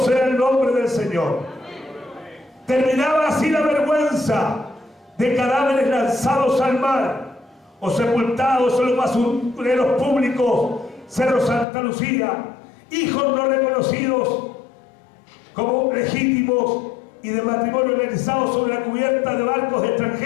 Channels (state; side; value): drops out; right; at 11.7 s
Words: el nombre del Señor. Terminaba así la vergüenza de cadáveres lanzados al mar o sepultados en los basureros públicos, Cerro Santa Lucía, hijos no reconocidos como legítimos y de matrimonio realizados sobre la cubierta de barcos